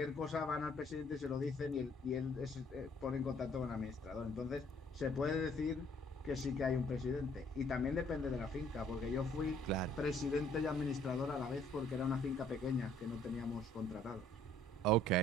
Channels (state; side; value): normal; both; correlation 0.61